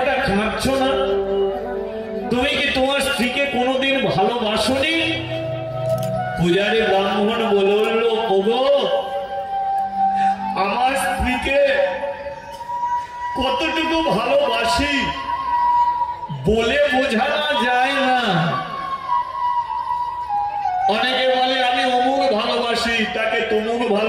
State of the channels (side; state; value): both; identical; correlation 1.00